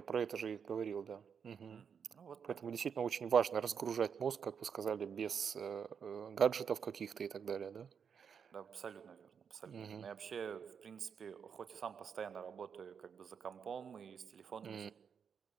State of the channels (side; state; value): left; quieter; 6.9 dB